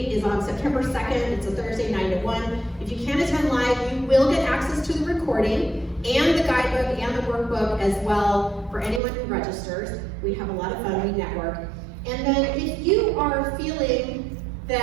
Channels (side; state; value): left; drops out; at 9.0 s